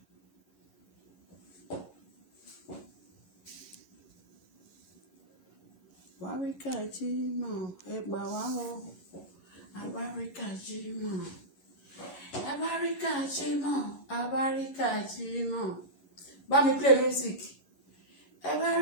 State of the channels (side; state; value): right; late; 11 ms